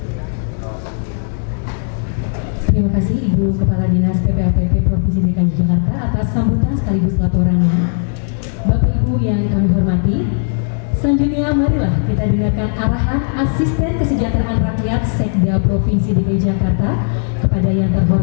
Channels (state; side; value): silent; right; digital silence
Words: Terima kasih Ibu Kepala Dinas PPAPP Provinsi DKI Jakarta atas sambutan sekaligus laporannya. Bapak Ibu yang kami hormati, selanjutnya marilah kita dengarkan arahan Asisten Kesejahteraan Rakyat Sekda Provinsi DKI Jakarta kepada yang